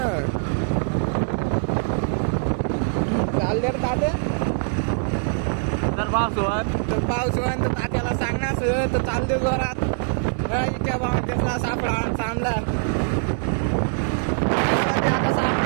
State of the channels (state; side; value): silent; left; digital silence